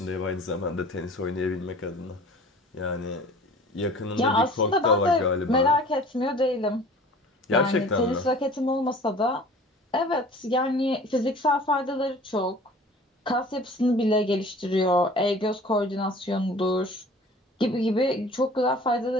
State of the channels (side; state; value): both; normal; correlation 0.46